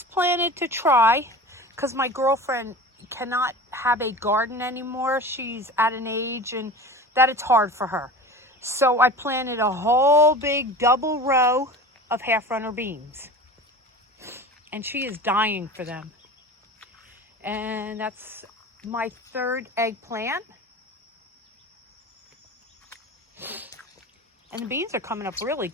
planted to try, because my girlfriend cannot have a garden anymore. She's at an age and that it's hard for her. So I planted a whole big double row of half-runner beans. And she is dying for them. And that's my third eggplant. And the beans are coming up really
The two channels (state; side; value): normal; both; correlation 0.35